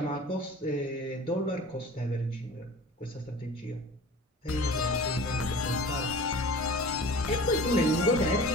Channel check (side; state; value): both; normal; correlation 0.40